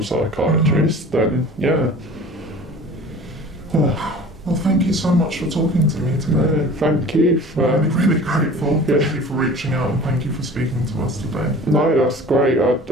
psychiatrist, then yeah. Well, thank you so much for talking to me today. Thank you for... I'm really grateful. Thank you for reaching out and thank you for speaking to us today. No, that's great. I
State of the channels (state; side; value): normal; both; correlation 0.43